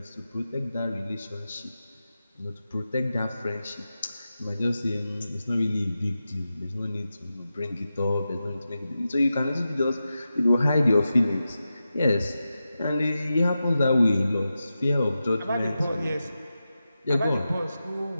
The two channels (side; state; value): both; inverted; correlation -0.91